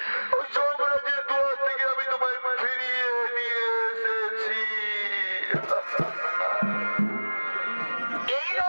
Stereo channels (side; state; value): both; inverted; correlation -1.00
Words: ওই যমরাজের দুয়ার থেকে আমি তোমায় ফিরিয়ে নিয়ে এসেছি। এই